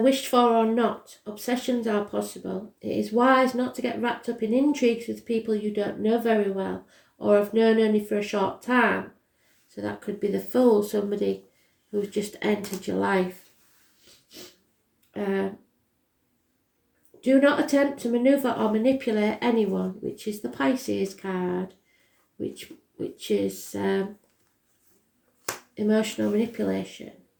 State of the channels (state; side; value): identical; both; correlation 1.00